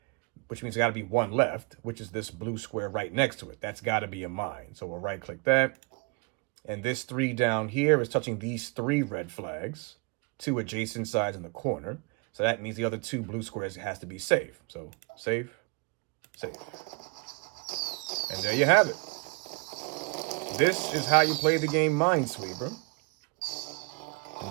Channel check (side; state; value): left; quieter; 30.6 dB